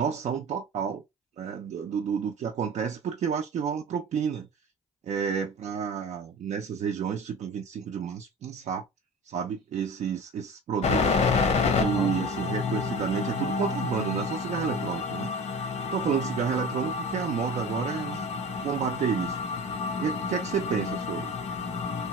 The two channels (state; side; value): normal; both; correlation 0.35